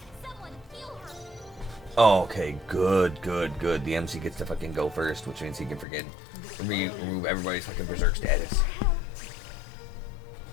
Someone heal her. Oh, okay. Good, good, good. The MC gets to fucking go first, which means he can freaking remove everybody's fucking berserk status.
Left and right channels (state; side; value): drops out; right; at 5.9 s